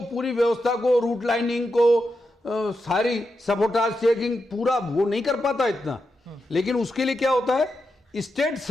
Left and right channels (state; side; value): normal; both; correlation 0.87